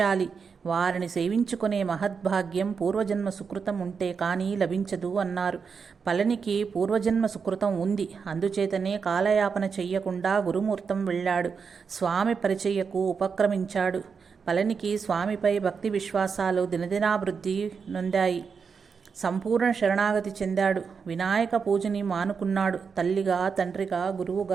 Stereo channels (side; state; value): left; quieter; 5.8 dB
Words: వారిని సేవించుకునే మహద్భాగ్యం పూర్వజన్మ సుకృతం ఉంటే కానీ లభించదు అన్నారు. పళనికి పూర్వజన్మ సుకృతం ఉంది. అందుచేతనే కాలయాపన చెయ్యకుండా గురుమూర్తం వెళ్ళాడు. స్వామి పరిచయకు ఉపక్రమించాడు. పళనికి స్వామిపై భక్తి విశ్వాసాలు దినదినాభివృద్ధి నొందాయి. సంపూర్ణ శరణాగతి చెందాడు. వినాయక పూజని మానుకున్నాడు. తల్లిగా, తండ్రిగా,